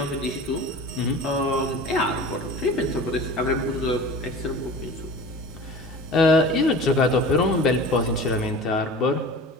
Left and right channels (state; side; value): normal; both; correlation 0.38